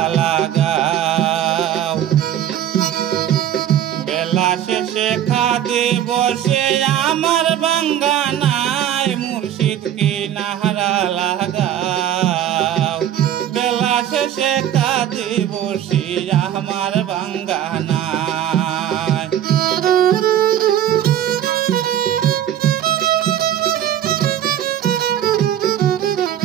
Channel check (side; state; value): left; quieter; 10.9 dB